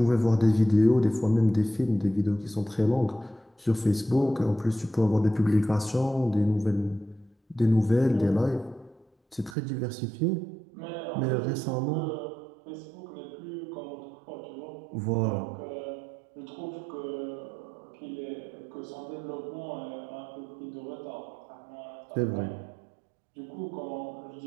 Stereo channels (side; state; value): left; drops out; at 9.6 s